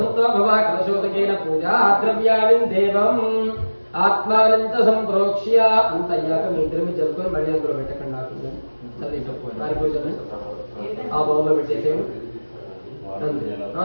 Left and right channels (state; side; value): inverted; both; correlation -1.00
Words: భవ. కలశోదకేన పూజా ద్రవ్యాణి దేవం ఆత్మానం చ సంప్రోక్ష్య. అంత అయ్యాక మీ ఇద్దరు మీరు జరుపుకొని మళ్ళీ అందులో పెట్టకండి. నాకు వారి పూజలు ఆ బౌల్లో పెట్టేసేయండి.